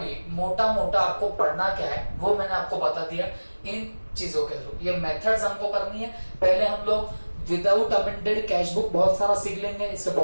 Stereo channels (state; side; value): inverted; both; correlation -1.00